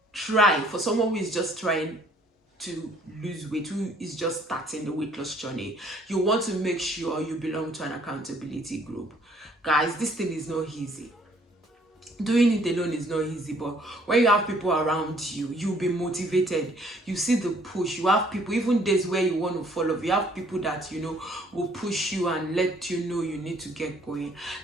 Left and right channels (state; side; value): normal; both; correlation 0.61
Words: Try, for someone who is just trying to lose weight, who is just starting the weight loss journey, you want to make sure you belong to an accountability group. Guys, this thing is not easy. Doing it alone is not easy, but when you have people around you, you'll be motivated. You see the push. You have people, even days where you want to fall off, you have people that will push you and let you know you need to get going.